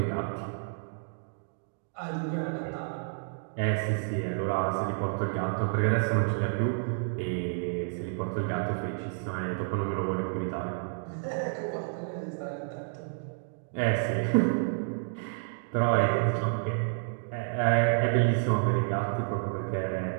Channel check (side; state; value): left; silent; digital silence